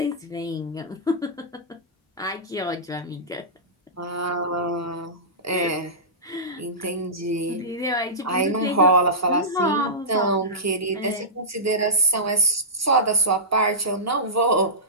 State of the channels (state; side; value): normal; both; correlation -0.17